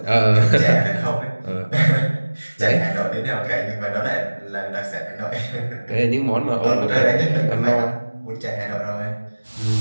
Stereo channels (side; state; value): both; inverted; correlation -1.00